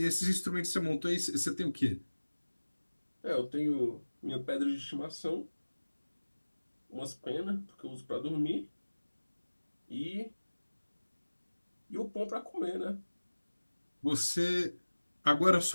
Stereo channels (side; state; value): both; inverted; correlation -1.00